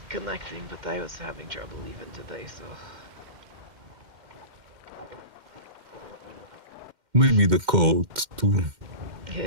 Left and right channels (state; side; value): late; left; 2.1 ms